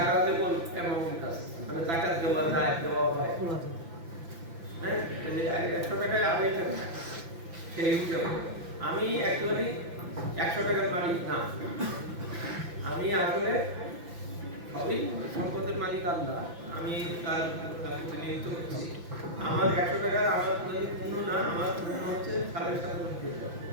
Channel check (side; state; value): left; late; 5.9 ms